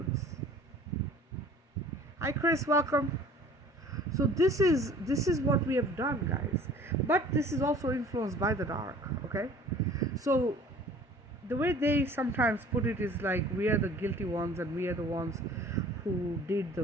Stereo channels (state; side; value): normal; both; correlation 0.49